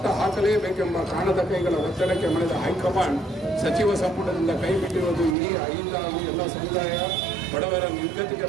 ಹಾಕಲೇಬೇಕೆಂಬ ಕಾಣದ ಕೈಗಳ ಒತ್ತಡಕ್ಕೆ ಮಣಿದ ಹೈಕಮಾಂಡ್ ಸಚಿವ ಸಂಪುಟದಿಂದ ಕೈಬಿಟ್ಟಿರುವುದು ಇಡೀ ಐದು ಹಾಗೂ ಎಲ್ಲ ಸಮುದಾಯ ಬಡವರ ನಿರ್ಗತಿಕರ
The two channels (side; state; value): left; drops out; at 5.4 s